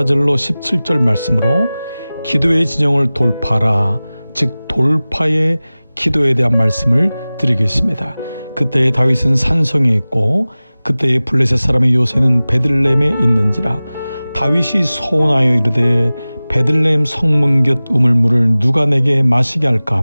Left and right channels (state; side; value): inverted; both; correlation -0.98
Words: 17절 말씀으로 기도의 진영을 돌파하라, 즉 돌파의 기도에 대한 말씀을 드리겠습니다. 그때의 다윗은 산성에 있고 그때의 블레셋 사람의 요새는 베들레헴에 있는지라. 다윗이 소원하여 이르되 베들레헴 성문 곁 우물물을 누가 내게 마시게 할까